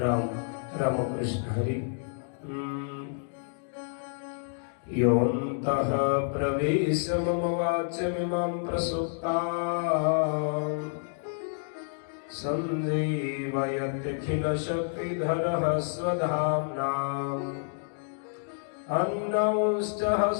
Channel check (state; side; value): silent; right; digital silence